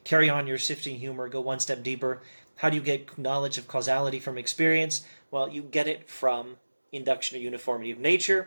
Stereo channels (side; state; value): both; inverted; correlation -1.00